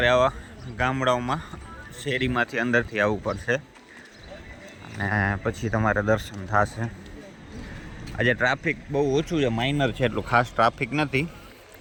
આવા ગામડાઓમાં શેરીમાંથી અંદરથી આવવું પડશે અને પછી તમારે દર્શન થશે. આજે ટ્રાફિક બહુ ઓછું છે, માઇનર છે, એટલું ખાસ ટ્રાફિક નથી.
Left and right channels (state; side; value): identical; both; correlation 1.00